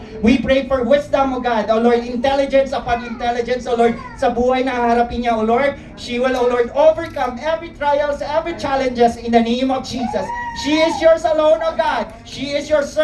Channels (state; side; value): identical; both; correlation 1.00